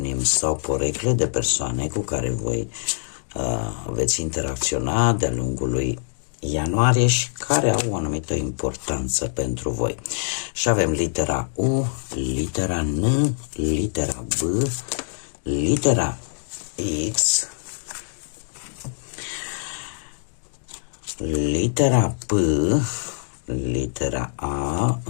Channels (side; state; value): right; silent; digital silence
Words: sau porecle de persoane cu care voi veți interacționa de-a lungul lui ianuarie și care au o anumită importanță pentru voi. Și avem litera U, litera N, litera B, litera X, litera P, litera A,